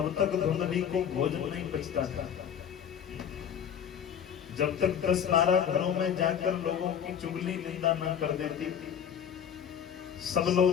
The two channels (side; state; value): right; quieter; 8.5 dB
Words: तक धुंधली को भोजन नहीं पचता था। जब तक 10-12 घरों में जाकर लोगों की चुगली निंदा न कर देती, सब